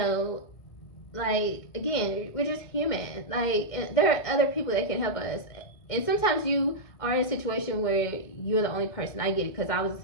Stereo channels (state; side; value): late; right; 2.1 ms